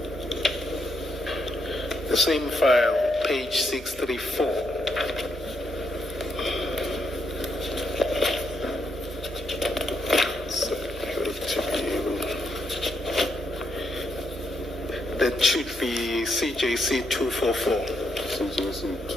the same file, page 634, that should be CJC 244. CJC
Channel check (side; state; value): both; normal; correlation 0.78